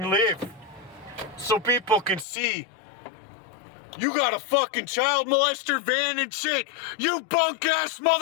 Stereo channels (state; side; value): drops out; right; at 2.2 s